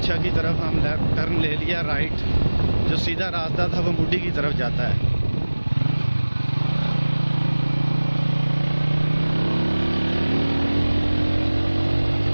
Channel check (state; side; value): inverted; both; correlation -1.00